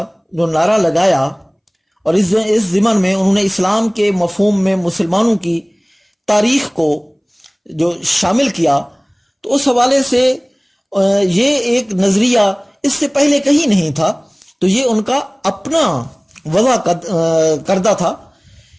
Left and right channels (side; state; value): both; identical; correlation 1.00